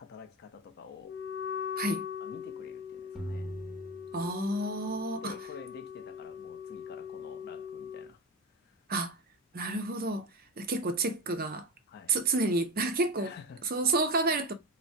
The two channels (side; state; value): both; normal; correlation 0.22